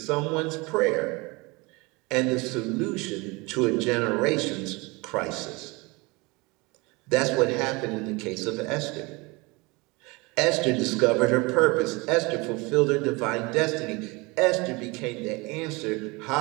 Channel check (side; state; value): left; quieter; 25.6 dB